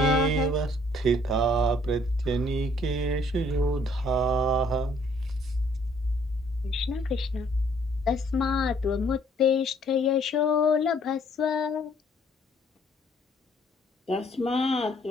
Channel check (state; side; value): normal; both; correlation 0.62